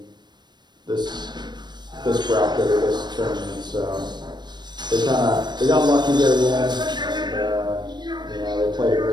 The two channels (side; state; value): left; late; 0.21 ms